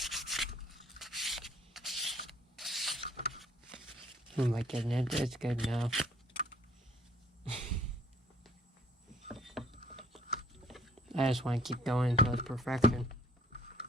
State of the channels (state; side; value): normal; both; correlation 0.59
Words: Oh my goodness, it's good now. I just want to keep going until it's perfection.